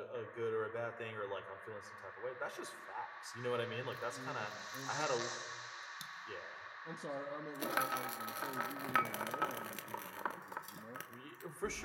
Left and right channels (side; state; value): both; identical; correlation 1.00